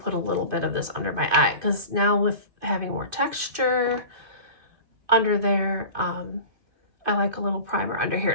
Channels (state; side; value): late; left; 2.5 ms